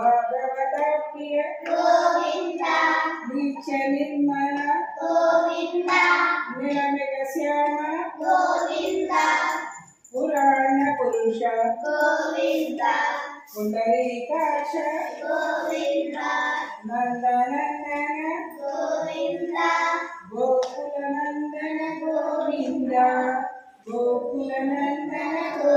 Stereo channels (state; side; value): identical; both; correlation 1.00